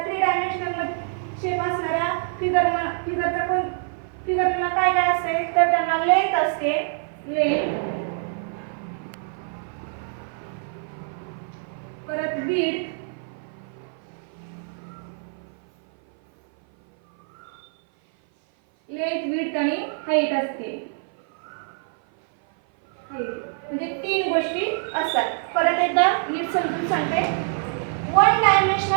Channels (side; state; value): left; silent; 56 dB below the other